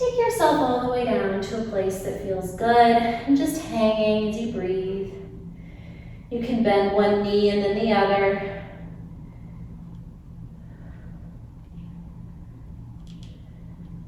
yourself all the way down to a place that feels good, and just hanging as you breathe. You can bend one knee and then the other.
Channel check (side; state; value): both; identical; correlation 1.00